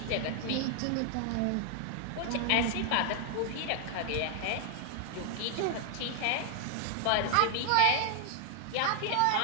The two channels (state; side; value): different; both; correlation 0.00